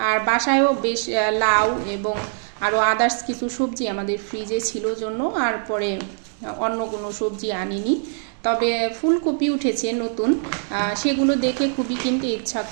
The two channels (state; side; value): silent; left; digital silence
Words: আর বাসায়ও বেশ লাউ এবং আরও আদার্স কিছু সবজি আমাদের ফ্রিজে ছিল জন্য আর পরে অন্য কোনো সবজি আনিনি। তবে ফুলকপি উঠেছে নতুন, সেগুলো দেখে খুবই কিনতে ইচ্ছা